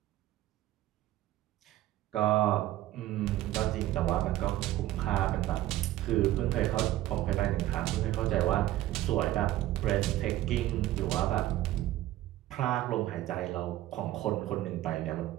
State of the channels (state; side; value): quieter; left; 14.9 dB